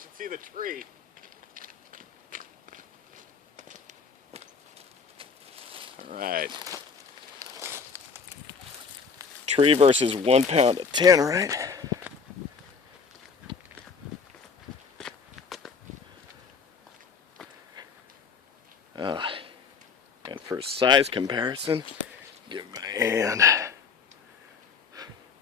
see the tree. All right. Tree versus 1 pound of Tannerite. And for size comparison, give my hand.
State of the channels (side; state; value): right; quieter; 5.5 dB